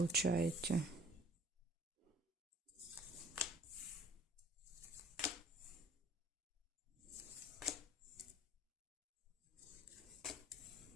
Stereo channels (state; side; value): normal; both; correlation 0.52